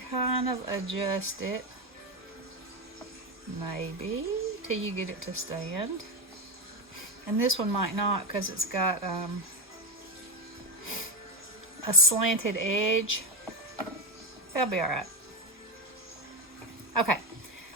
kind of adjust it, maybe, till you get it to stand. And this one might not because it's got a slanted edge. That'll be alright. Okay,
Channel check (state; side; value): normal; both; correlation 0.14